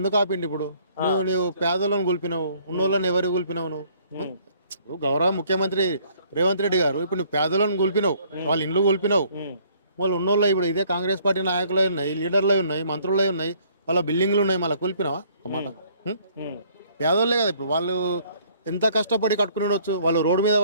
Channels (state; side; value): inverted; both; correlation -0.61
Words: ఆపిండి? ఇప్పుడు నువ్వు పేదలను కూల్పినావు, ఉన్నోళ్ళని ఎవరు కూల్పినావు? నువ్వు ఇప్పుడు గౌరవ ముఖ్యమంత్రి రేవంత్ రెడ్డి గారు ఇప్పుడు నువ్వు పేదలను కూల్పినావు, వాళ్ళ ఇండ్లు కూల్పినావు. వాళ్ళు ఉన్నోళ్ళు ఇప్పుడు ఇదే కాంగ్రెస్ పార్టీ నాయకులు ఉన్నాయి, లీడర్లు ఉన్నాయి, మంత్రులు ఉన్నాయి, వాళ్ళ బిల్డింగ్లు ఉన్నాయి, మళ్ళీ కూల్పినావా? ఒక మాట. పేదోళ్ళే కదా ఇప్పుడు వాళ్ళు ఎంత కష్టపడి కట్టుకుని ఉండొచ్చు. వాళ్ళు రోడ్డు మీద